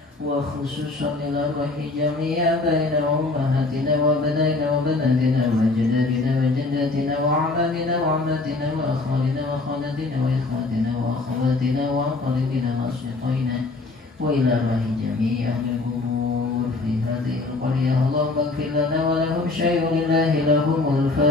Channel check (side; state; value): right; quieter; 3.4 dB